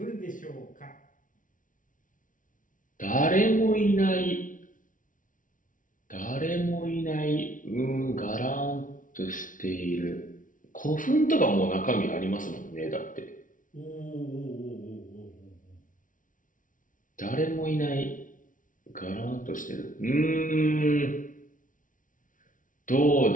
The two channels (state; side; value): late; right; 0.38 ms